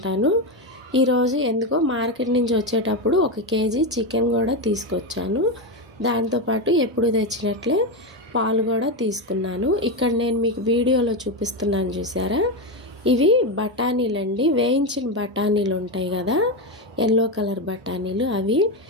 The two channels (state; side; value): normal; both; correlation 0.12